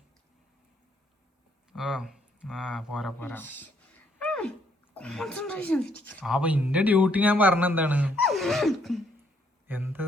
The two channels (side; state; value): both; normal; correlation 0.70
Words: പോരാ. അപ്പൊ ഇന്റെ ഡ്യൂട്ടി ഞാൻ പറഞ്ഞ എന്താണ്, എന്ത്